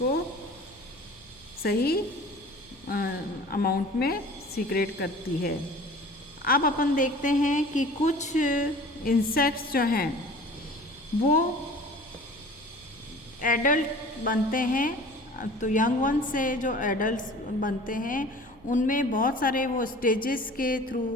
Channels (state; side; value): noise; left; hum, 28 dB below the sound